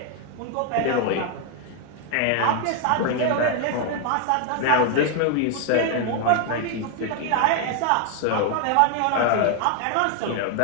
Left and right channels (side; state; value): both; different; correlation 0.00